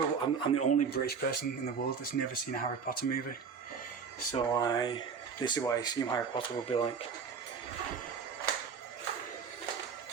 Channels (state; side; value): quieter; left; 6.0 dB